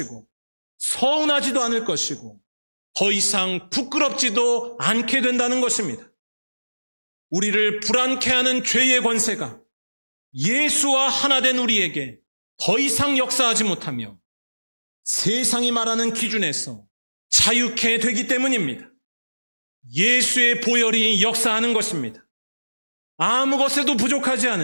서운하지도 않을 것이고 더 이상 부끄럽지도 않게 된다는 것입니다. 우리를 불안케 하는 죄의 권세가 예수와 하나 된 우리에게 더 이상 역사하지 못하며 세상이 말하는 기준에서 자유케 되기 때문입니다. 예수의 보혈이 역사하는 것입니다. 아무 것에도 부족하지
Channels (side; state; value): both; inverted; correlation -1.00